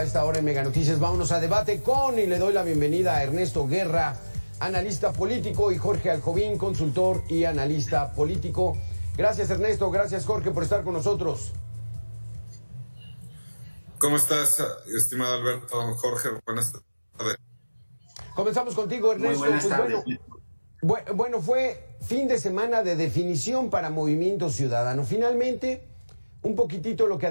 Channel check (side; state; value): both; inverted; correlation -1.00